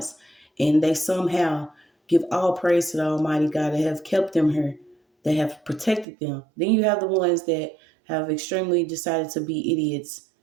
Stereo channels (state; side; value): drops out; left; at 6.1 s